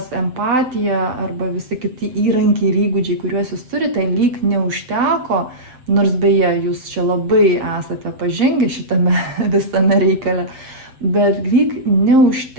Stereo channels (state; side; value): late; left; 7.8 ms